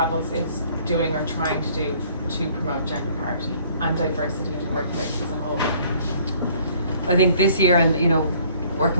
is doing or trying to do to promote gender parity and diversity in the workplace as a whole? I think this year, and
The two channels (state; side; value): inverted; both; correlation -0.58